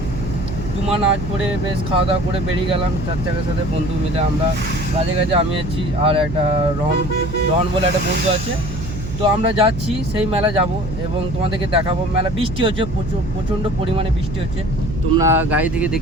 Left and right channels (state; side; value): noise; right; hum, 8 dB below the sound